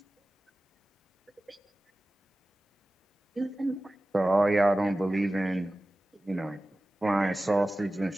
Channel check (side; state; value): both; normal; correlation 0.96